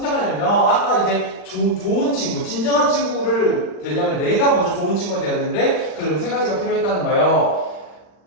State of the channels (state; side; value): late; right; 40 ms